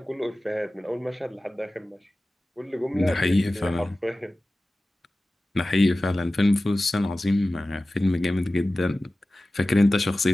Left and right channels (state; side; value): normal; both; correlation 0.96